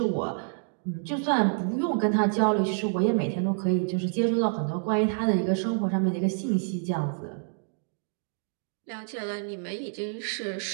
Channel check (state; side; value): silent; left; digital silence